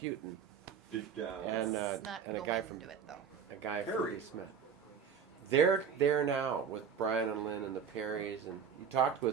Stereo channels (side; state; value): left; quieter; 7.0 dB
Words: Did, and Let's not and a go guy from into it though. Prairie. Smith. They're there now with Brian and Lynn and the Perrys, and you talked